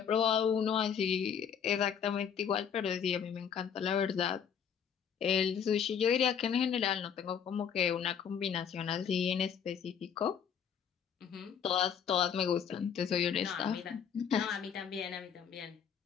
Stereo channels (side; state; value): right; quieter; 7.7 dB